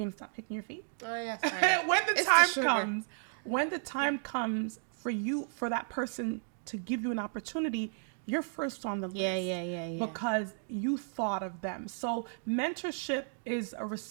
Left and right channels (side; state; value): left; silent; digital silence